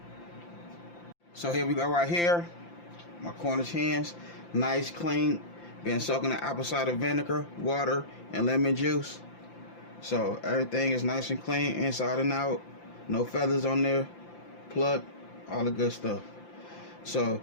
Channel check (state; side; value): late; right; 5.8 ms